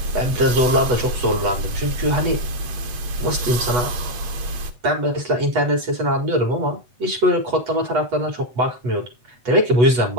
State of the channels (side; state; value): left; late; 8.1 ms